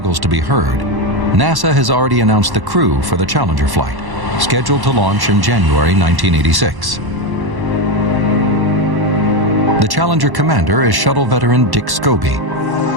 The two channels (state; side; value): late; left; 1.1 ms